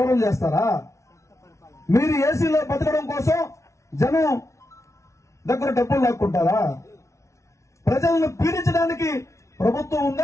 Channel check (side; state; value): right; late; 0.14 ms